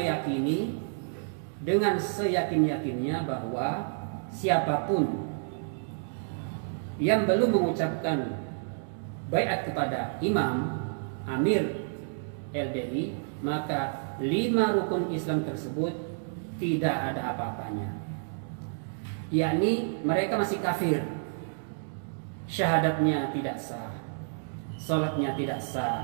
dengan seyakin-yakinnya bahwa siapapun yang belum mengucapkan baiat kepada imam, amir LDI, maka 5 rukun Islam tersebut tidak ada apa-apanya. Yakni mereka masih kafir, syahadatnya tidak sah, sholatnya tidak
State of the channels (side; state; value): left; silent; digital silence